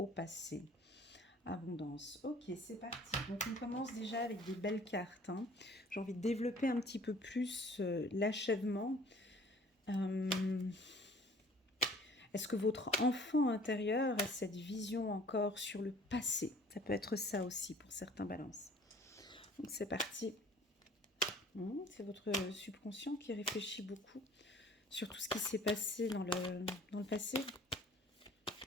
passé. Abondance. Ok, c'est parti. Donc, on commence déjà avec des belles cartes. Hein. J'ai envie de développer un petit peu plus l'achèvement. Est-ce que votre enfant intérieur a cette vision encore sur le passé? Ça peut être ça aussi pour certains balances. Donc, c'est parti. C'est votre subconscient qui réfléchit beaucoup sur tout ce qui s'est passé dans le passé.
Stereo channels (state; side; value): normal; both; correlation 0.52